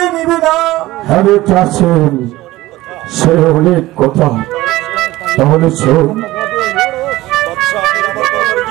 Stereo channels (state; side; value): quieter; left; 17.6 dB